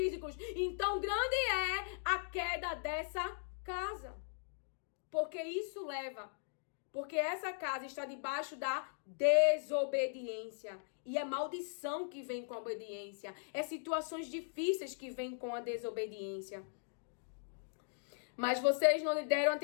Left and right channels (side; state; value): right; silent; digital silence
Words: Então grande é a queda dessa casa. Porque essa casa está debaixo da desobediência. E é maldição que vem com a obediência. É situações difíceis que vêm com a desobediência. Mas vocês não lhe deram